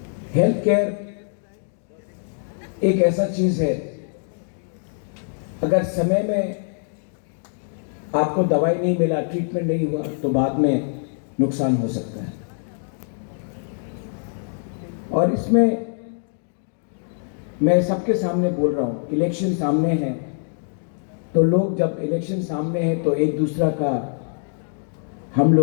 हेल्थ केयर एक ऐसा चीज है, अगर समय में आपको दवाई नहीं मिला, ट्रीटमेंट नहीं हुआ, तो बाद में नुकसान हो सकता है। और इसमें मैं सबके सामने बोल रहा हूं, इलेक्शन सामने है, तो लोग जब इलेक्शन सामने है तो एक दूसरा का हम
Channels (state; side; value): silent; right; digital silence